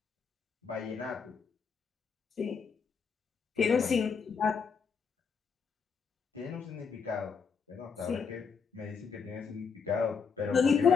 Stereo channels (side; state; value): right; quieter; 5.8 dB